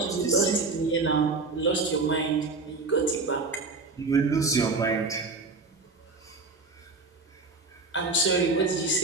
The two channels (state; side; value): quieter; left; 3.8 dB